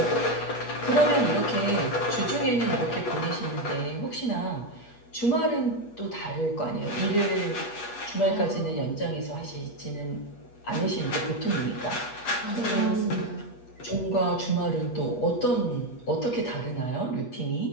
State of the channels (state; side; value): late; right; 8.3 ms